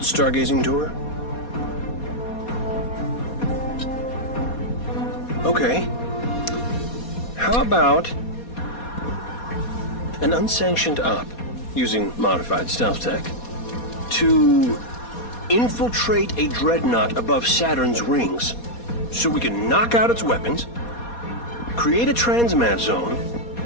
tour? Okay. How about an unsanctioned op using modified stealth tech to infiltrate a dreadnought above Saturn's rings so we can knock out its weapons, create a transmat zone,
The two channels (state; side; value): late; right; 4.2 ms